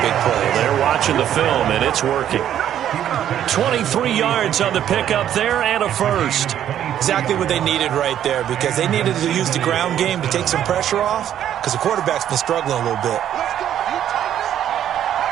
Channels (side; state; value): left; quieter; 10.6 dB